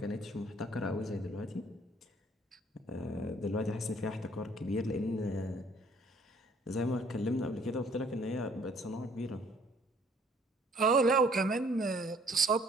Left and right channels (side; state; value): both; normal; correlation 0.59